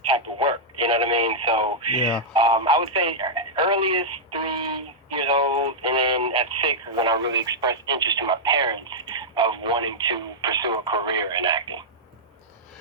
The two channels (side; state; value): both; normal; correlation -0.08